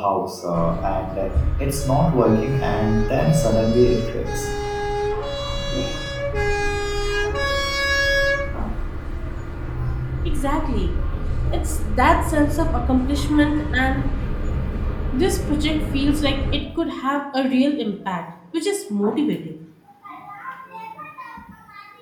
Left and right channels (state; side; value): identical; both; correlation 1.00